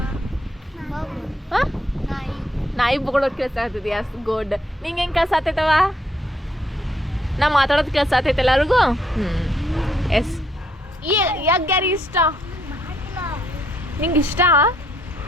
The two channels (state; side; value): normal; both; correlation 0.71